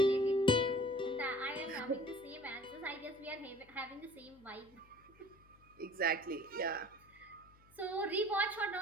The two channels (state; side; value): noise; left; hum, 27 dB below the sound